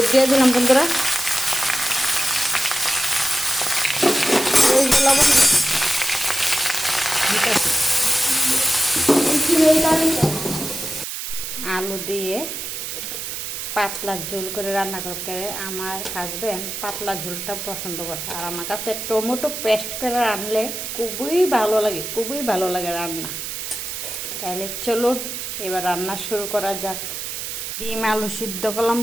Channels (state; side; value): noise; right; hiss, 6 dB below the sound